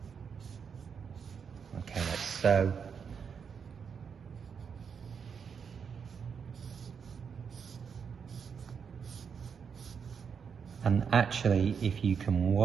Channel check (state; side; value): quieter; left; 6.6 dB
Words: Okay, like so. And actually, if you can